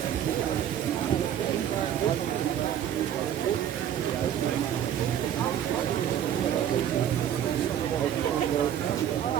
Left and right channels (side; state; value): left; quieter; 10.1 dB